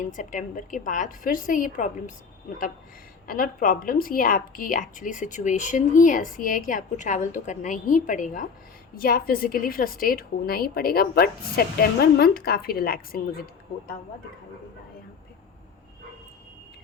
सितंबर के बाद फिर से ये प्रॉब्लम्स, मतलब नॉट प्रॉब्लम्स, ये आपकी एक्चुअली सिचुएशन ही ऐसी है कि आपको ट्रैवल तो करना ही पड़ेगा या फिज़िकली फ्रस्ट्रेट होना ही पड़ेगा। बट सितंबर मंथ काफ़ी रिलैक्सिंग मुझे होता हुआ दिखाई दे रहा है। यहाँ पे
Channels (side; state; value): right; quieter; 5.7 dB